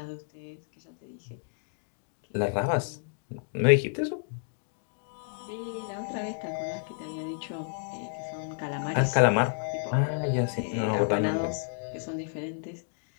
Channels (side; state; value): right; silent; digital silence